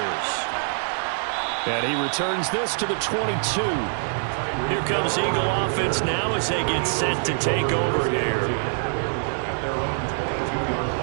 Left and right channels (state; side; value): silent; left; digital silence